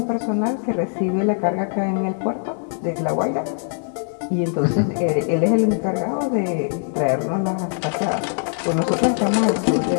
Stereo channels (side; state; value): right; silent; 64 dB below the other